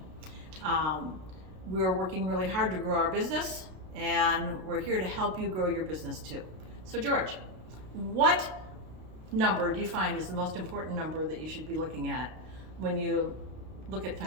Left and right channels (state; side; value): late; left; 32 ms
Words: We're working really hard to grow our business, and we're here to help you grow your business too. So George, what number do you find is the most important number that you should be looking at when you look at